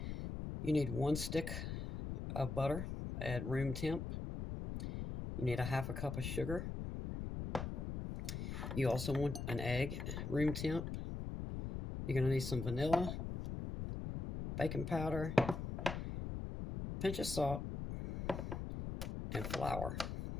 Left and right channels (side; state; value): left; noise; rumble, 5 dB below the sound